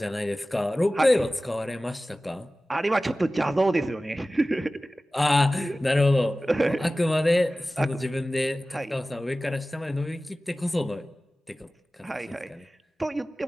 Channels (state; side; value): normal; both; correlation 0.96